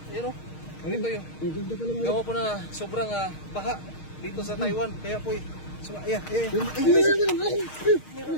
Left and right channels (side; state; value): right; late; 6.5 ms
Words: Ayan, no? Ganito yun. Ang ganda pala mga Gawa po na sobrang baha dito sa Taiwan. Kaya po, ayan.